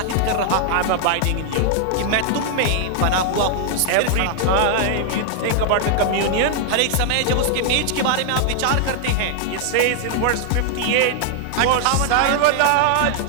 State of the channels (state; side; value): different; both; correlation -0.01